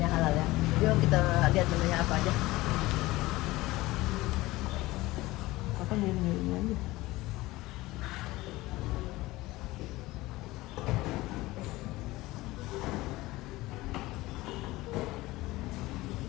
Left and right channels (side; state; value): right; quieter; 19.2 dB